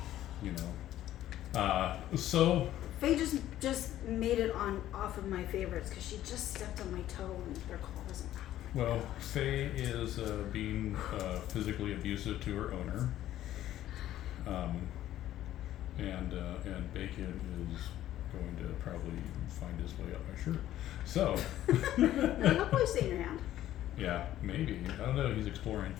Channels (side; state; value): right; quieter; 13.0 dB